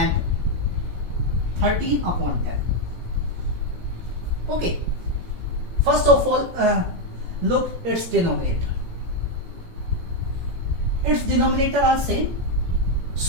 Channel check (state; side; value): late; left; 18 ms